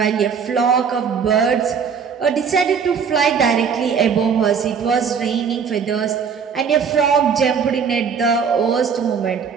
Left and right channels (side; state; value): left; quieter; 6.5 dB